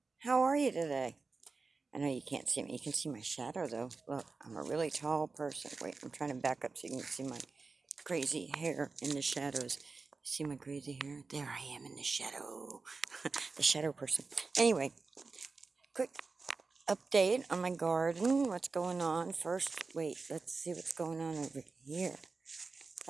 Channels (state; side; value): quieter; left; 4.1 dB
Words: how are you today? I know you can't see me. You can see my shadow though. Look, I'm a really tall person. Wait, I'm trying to back up so you can see my crazy hair in the shadows. See my crazy hair? There I am in the shadow. The shadow person. Anyway, quick update on my garden. What's going on? First, wait, let's see what's going on over here.